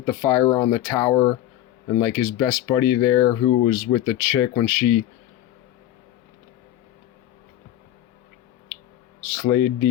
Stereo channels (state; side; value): quieter; right; 13.0 dB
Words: the fire on the tower, and like his best buddy there who was with the chick when she slayed